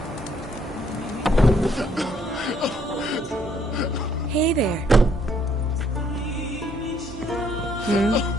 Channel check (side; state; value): both; normal; correlation 0.67